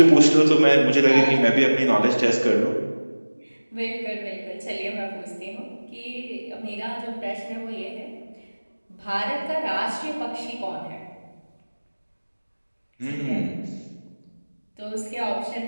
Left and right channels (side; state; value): both; inverted; correlation -1.00